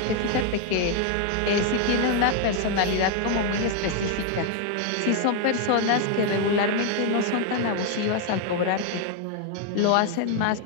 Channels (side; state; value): both; different; correlation 0.01